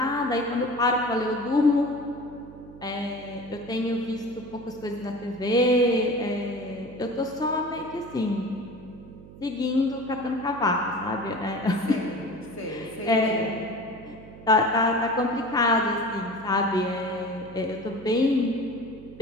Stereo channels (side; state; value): right; noise; hum, 18 dB below the sound